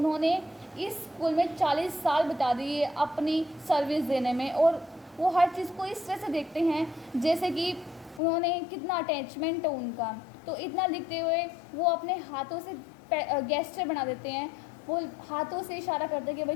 इस स्कूल में 40 साल बिता दिए अपनी सर्विस देने में, और वो हर चीज़ को इस तरह से देखते हैं जैसे कि उन्होंने कितना अटैचमेंट है उनका। तो इतना लिखते हुए वो अपने हाथों से गेस्चर बना देते हैं, वो हाथों से इशारा करते हैं कि भाई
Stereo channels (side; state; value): right; drops out; at 8.2 s